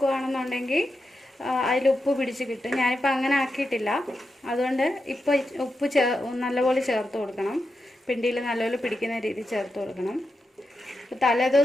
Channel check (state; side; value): normal; both; correlation 0.88